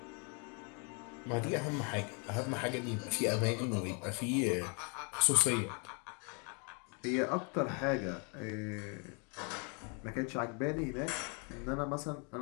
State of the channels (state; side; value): quieter; right; 35.5 dB